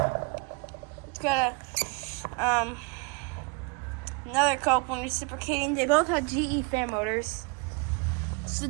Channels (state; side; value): quieter; left; 30.5 dB